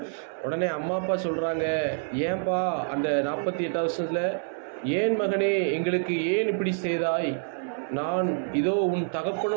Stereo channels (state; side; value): silent; left; digital silence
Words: உடனே அம்மா அப்பா சொல்கிறாங்க, ஏன்பா அந்த 48 வருஷத்தில் ஏன் மகனே எங்களுக்கு ஏன் இப்படி செய்தாய்? நான் இதோ உன்